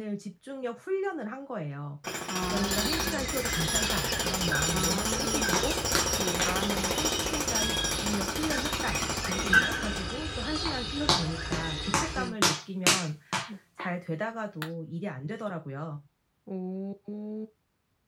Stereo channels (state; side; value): identical; both; correlation 1.00